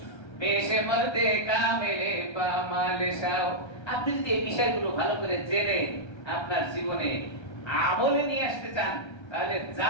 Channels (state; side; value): late; right; 1.3 ms